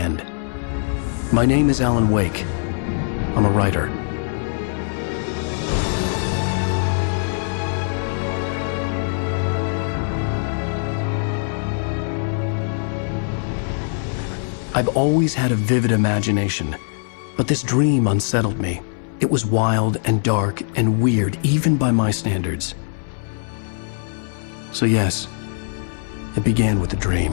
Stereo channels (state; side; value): silent; right; digital silence